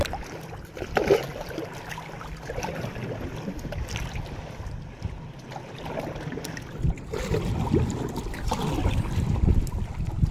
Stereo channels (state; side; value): identical; both; correlation 1.00